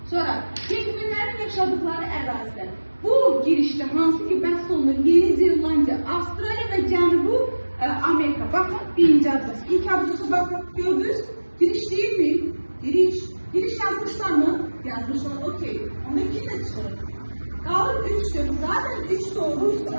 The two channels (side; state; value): both; inverted; correlation -1.00